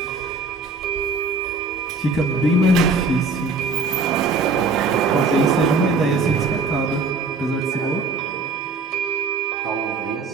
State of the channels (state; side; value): quieter; left; 3.8 dB